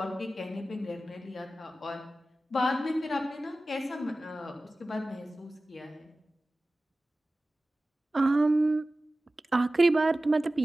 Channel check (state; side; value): normal; both; correlation 0.96